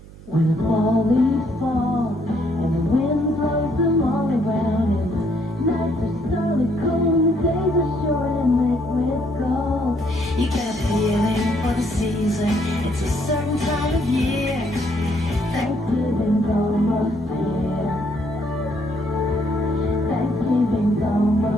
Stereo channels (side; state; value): right; noise; hum, 19 dB below the sound